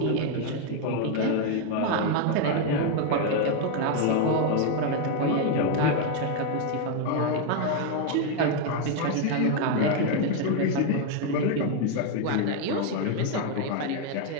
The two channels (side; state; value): both; different; correlation 0.01